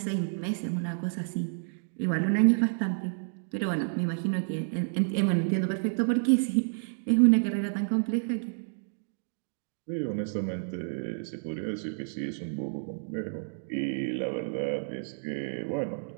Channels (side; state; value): left; silent; digital silence